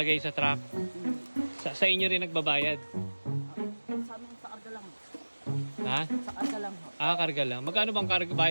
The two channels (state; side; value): inverted; both; correlation -1.00